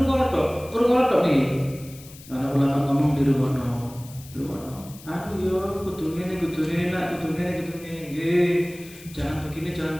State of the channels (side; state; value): left; noise; hiss, 19 dB below the sound